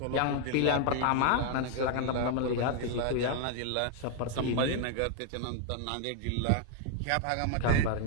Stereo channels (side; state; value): both; different; correlation 0.00